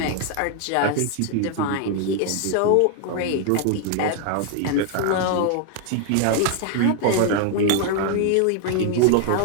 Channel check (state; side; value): different; both; correlation 0.00